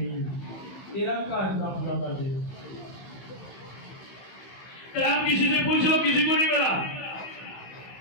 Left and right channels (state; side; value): late; right; 15 ms